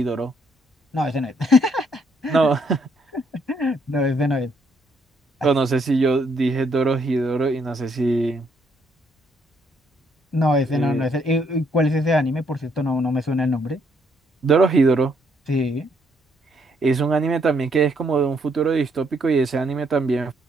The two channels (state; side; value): normal; both; correlation 0.71